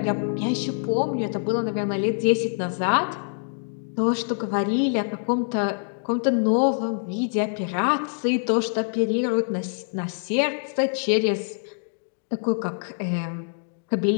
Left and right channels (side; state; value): right; silent; digital silence